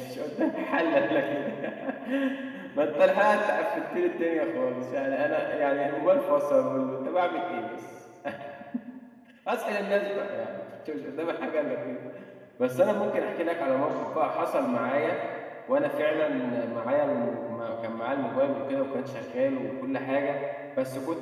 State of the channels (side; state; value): both; identical; correlation 1.00